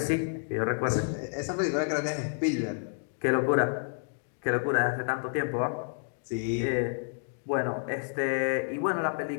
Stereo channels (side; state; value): right; silent; digital silence